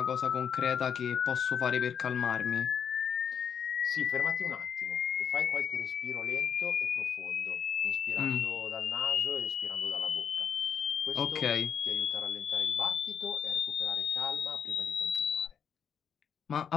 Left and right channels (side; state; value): right; quieter; 7.7 dB